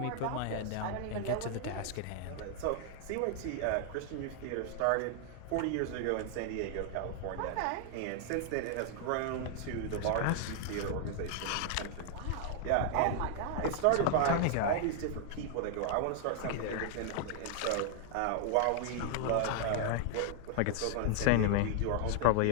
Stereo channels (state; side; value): different; both; correlation 0.00